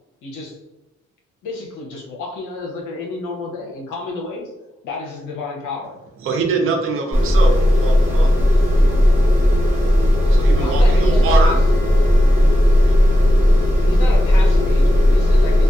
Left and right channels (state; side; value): normal; both; correlation 0.90